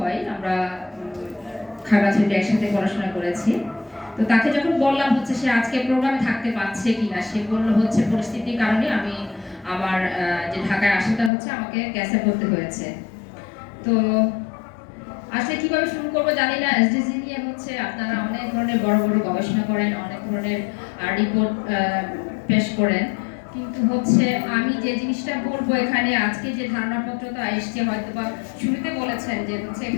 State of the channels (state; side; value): drops out; right; at 11.3 s